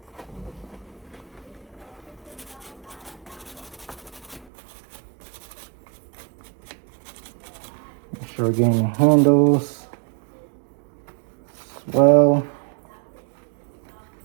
Make sure we're getting the handles as well.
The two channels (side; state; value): left; drops out; at 4.5 s